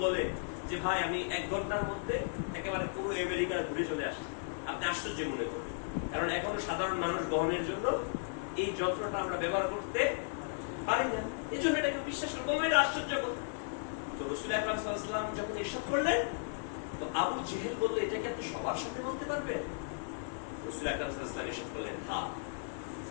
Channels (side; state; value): right; silent; digital silence